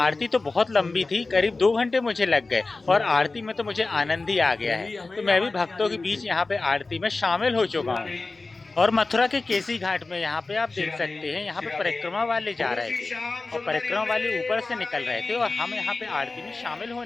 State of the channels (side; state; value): right; quieter; 3.6 dB